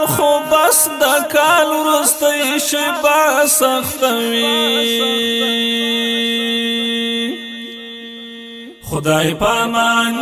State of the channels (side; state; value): both; identical; correlation 1.00